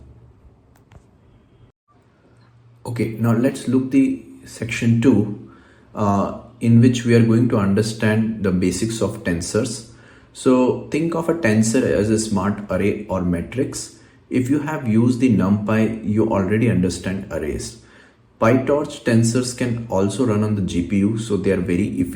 Okay, now let's look the section 2 in which we are going to understand the basics of tensors. So think of a tensor as a smart array or matrix. If you have used the NumPy, you already understand arrays. PyTorch tensors can also run on the GPU, so they are very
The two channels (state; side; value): identical; both; correlation 1.00